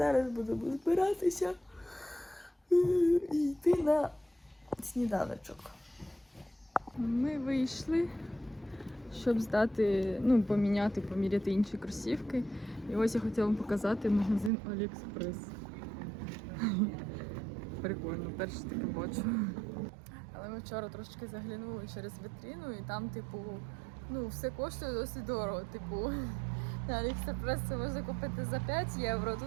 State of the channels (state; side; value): drops out; left; at 14.5 s